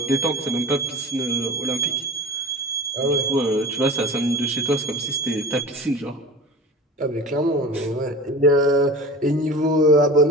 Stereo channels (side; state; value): both; normal; correlation 0.35